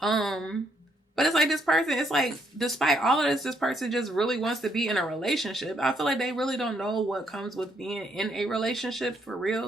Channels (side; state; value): both; normal; correlation 0.72